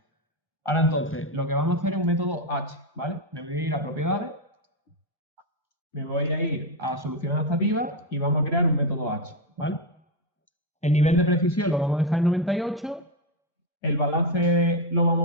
Ahora entonces, lo que vamos a hacer es un método H, ¿vale? Me voy a ir a propiedades, me voy a ir a solución adaptativa y vamos a crear un método H, ¿vale? El nivel de precisión lo vamos a dejar en 98, el balance lo vamos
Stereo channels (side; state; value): both; normal; correlation 0.07